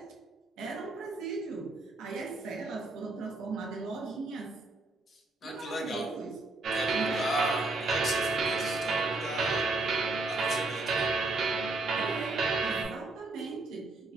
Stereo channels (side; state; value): left; quieter; 3.2 dB